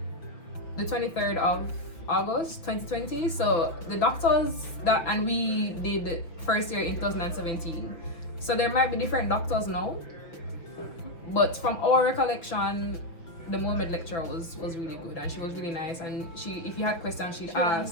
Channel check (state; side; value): late; right; 5.9 ms